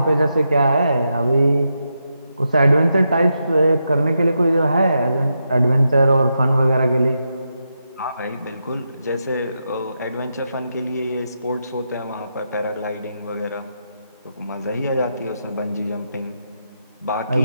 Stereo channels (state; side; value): inverted; both; correlation -0.85